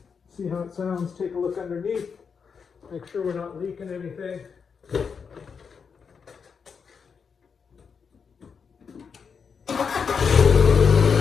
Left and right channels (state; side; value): quieter; right; 6.1 dB